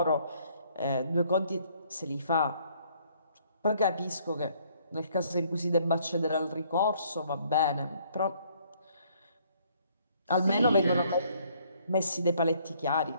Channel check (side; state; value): both; inverted; correlation -0.64